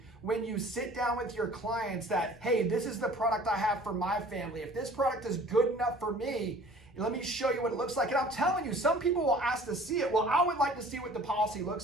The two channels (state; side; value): normal; both; correlation 0.49